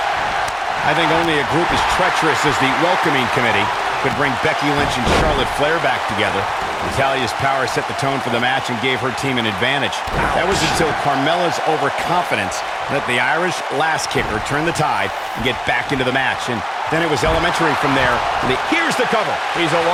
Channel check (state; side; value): identical; both; correlation 1.00